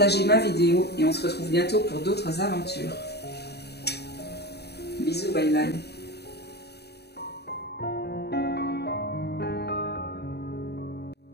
ma vidéo et on se retrouve bientôt pour d'autres aventures. Bisous, bye bye.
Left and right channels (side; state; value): right; late; 0.48 ms